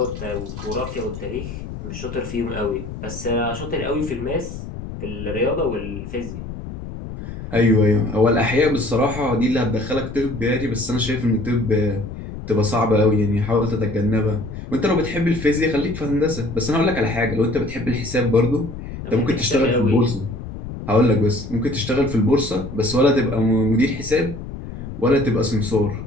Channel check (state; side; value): noise; left; rumble, 10 dB below the sound